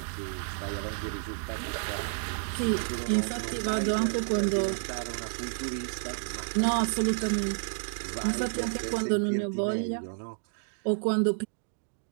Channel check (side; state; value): left; silent; digital silence